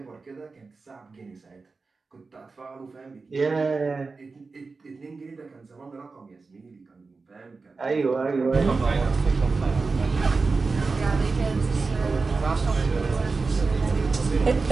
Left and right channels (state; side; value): quieter; left; 4.2 dB